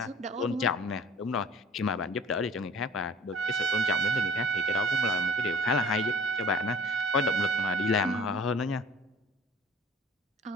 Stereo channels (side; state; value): both; normal; correlation 0.50